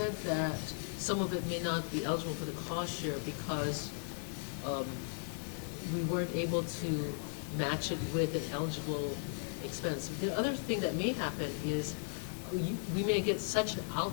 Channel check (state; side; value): silent; right; 53 dB below the other